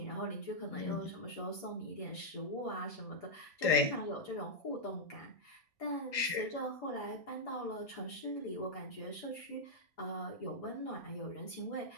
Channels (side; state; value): right; late; 1.7 ms